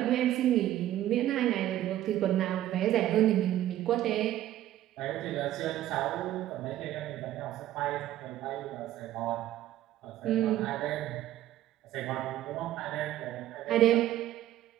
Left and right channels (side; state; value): left; quieter; 13.3 dB